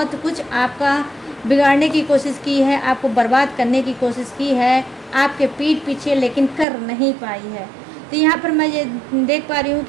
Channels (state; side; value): drops out; left; at 6.7 s